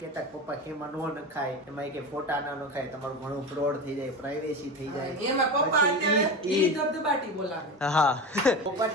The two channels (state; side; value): normal; both; correlation 0.25